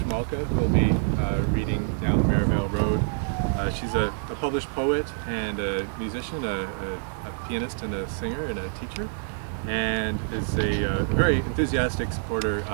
who will be reading Down the Merivale Road. She's a published poet and a musician, a pianist and a singer and a teacher, and is a very enthusiastic supporter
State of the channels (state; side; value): silent; left; digital silence